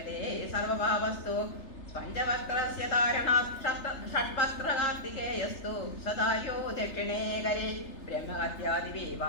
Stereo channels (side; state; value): right; late; 3.3 ms